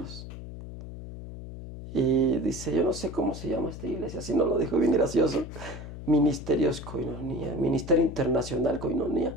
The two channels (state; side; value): noise; left; hum, 11 dB below the sound